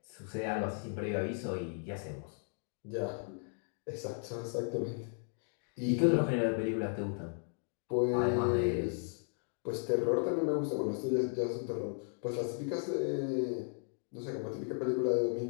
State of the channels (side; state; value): right; silent; 54 dB below the other